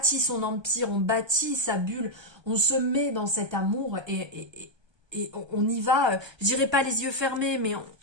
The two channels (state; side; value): late; left; 1.2 ms